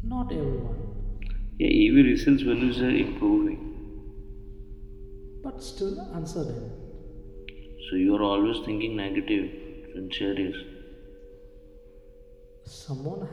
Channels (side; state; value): both; identical; correlation 1.00